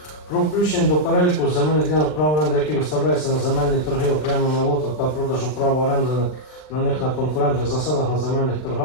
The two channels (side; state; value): right; late; 39 ms